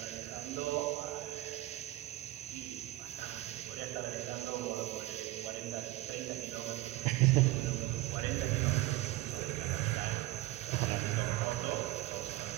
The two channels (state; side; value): quieter; left; 16.9 dB